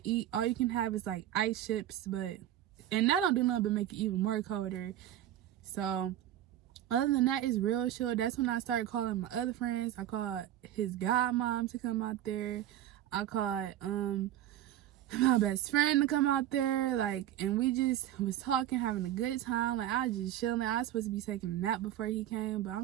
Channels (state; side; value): quieter; left; 12.3 dB